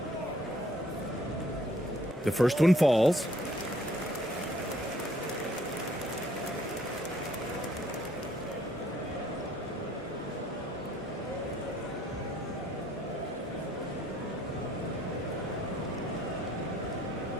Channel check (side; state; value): both; normal; correlation 0.63